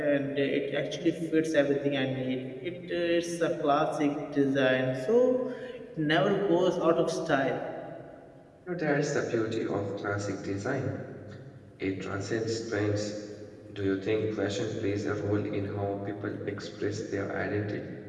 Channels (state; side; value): identical; both; correlation 1.00